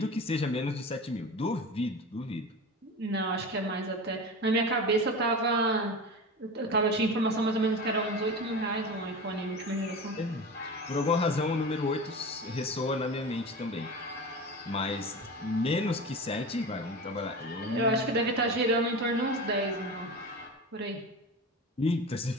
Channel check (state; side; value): normal; both; correlation 0.30